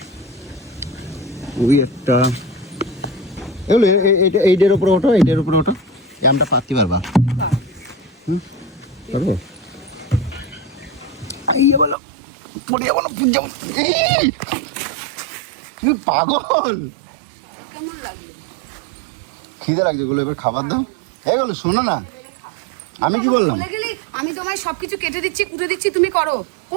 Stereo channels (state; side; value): drops out; left; at 12.0 s